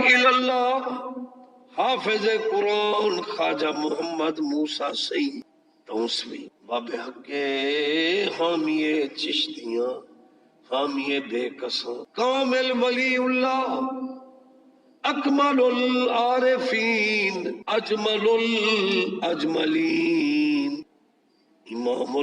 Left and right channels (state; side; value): identical; both; correlation 1.00